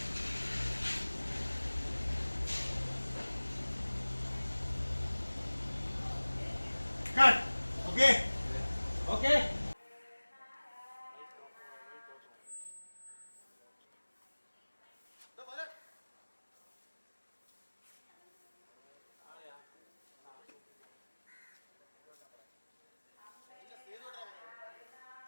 cut okay okay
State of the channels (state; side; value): inverted; both; correlation -1.00